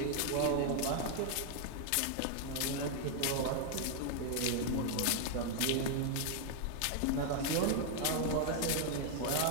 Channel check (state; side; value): different; both; correlation 0.00